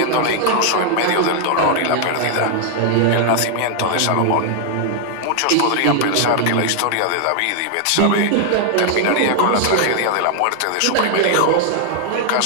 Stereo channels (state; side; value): different; both; correlation 0.00